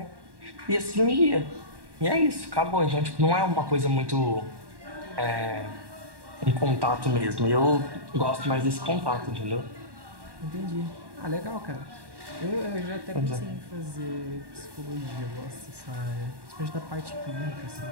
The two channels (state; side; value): late; left; 1.1 ms